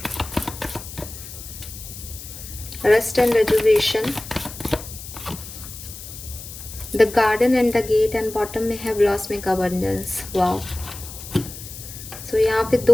rest and rejuvenation, the garden and the gate, and bottom में है blossoming abundance. Wow, सो यहाँ पे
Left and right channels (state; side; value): noise; left; hiss, 13 dB below the sound